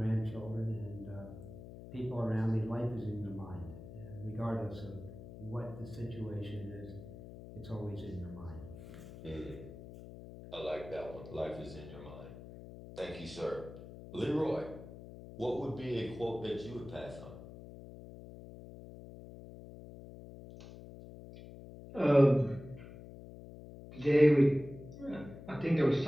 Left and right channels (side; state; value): left; noise; hum, 14 dB below the sound